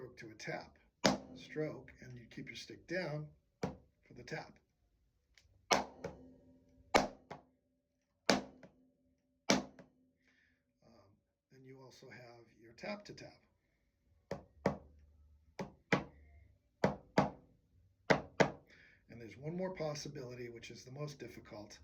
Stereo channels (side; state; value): both; identical; correlation 1.00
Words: to a tap. Stroke, and you keep your stick down for the tap. Then you also have your tap to tap. And there's one more possibility, which is the most difficult,